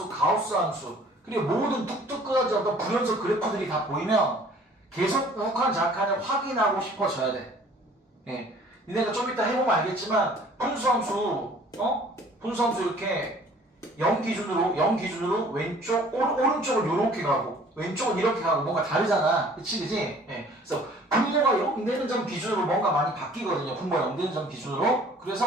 가우스 함수, 그리고 모든 뚝뚝 끊어진 어떤 불연속 그래프들이 다 보이면 계속 우극한 좌극한을 확인하고 싶어져야 돼. 예. 니네가 좀 이따 해보면 알겠지만 분수함수 분수함수 이렇게 0 기준으로 왼쪽 오른쪽을 요렇게 가고 왼쪽은 이렇게 가고 뭔가 다르잖아. 그치? 예. 그래서 분모가 0 되는 점 기준으로 뭔가 많이 바뀌거든요. 분모가 0 되는 점 기준으로.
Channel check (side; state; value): both; normal; correlation 0.53